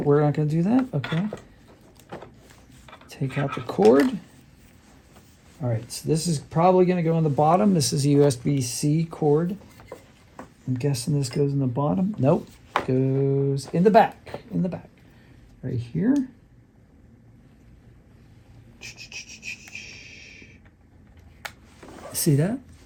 we're not going to do that. Okay. Take out the cord. All right, so this is probably going to go on the bottom. This is a USB-C cord. I'm guessing this goes in the bottom. Nope, goes in the back. In the back, right here. See that?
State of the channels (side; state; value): both; identical; correlation 1.00